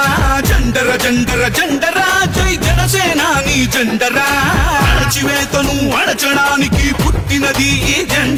జండర జండర జండరా జై జనసేనాని జెండరా అణచివేతను అణచడానికి పుట్టినది ఈ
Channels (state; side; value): identical; both; correlation 1.00